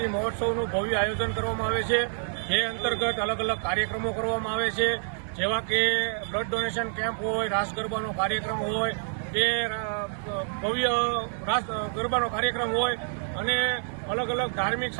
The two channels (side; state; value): left; silent; digital silence